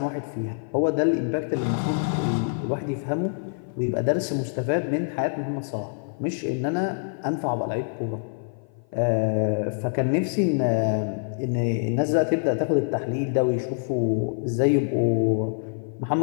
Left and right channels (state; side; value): silent; right; 55 dB below the other